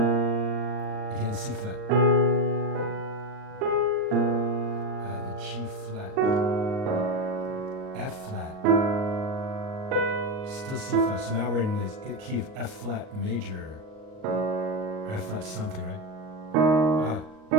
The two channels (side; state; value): left; late; 38 ms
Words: Again, C flat. The G flat. F flat. Still C flat. So now we're in this key of F flat major. Or F flat something, right?